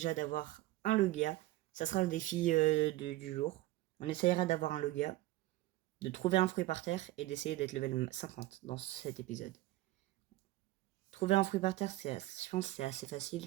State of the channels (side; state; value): left; quieter; 17.2 dB